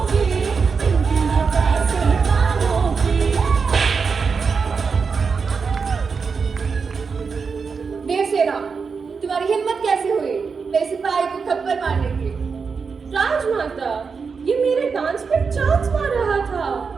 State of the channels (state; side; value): quieter; left; 5.3 dB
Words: की, पिंकी है पैसे वालों की। देवसेना, तुम्हारी हिम्मत कैसे हुई मेरे सिपाही को थप्पड़ मारने की? राजमाता, ये मेरे डांस पर चांस मार रहा था।